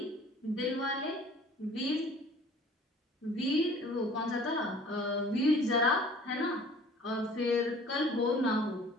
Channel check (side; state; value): both; normal; correlation 0.49